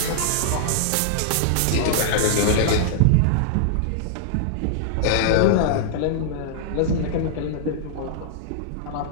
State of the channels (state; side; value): different; both; correlation -0.01